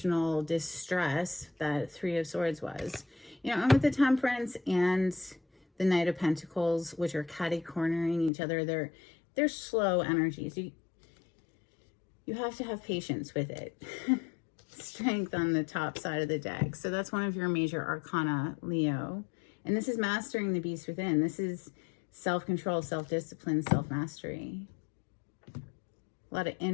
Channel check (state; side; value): drops out; right; at 8.3 s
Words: distress that Three of Swords was. You know, and with the Temperance and the Knight of Pentacles, which are catty-cornering each other, they're slow energies. You have to have patience with it. Strength on the top side of the deck. So that's one of your major arcana, Leo. And this is mastering the beast within. This is self-control, self-discipline, self-mastery. A lot of